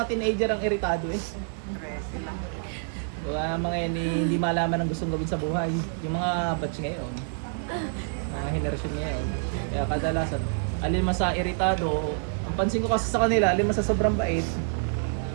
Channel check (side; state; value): left; silent; digital silence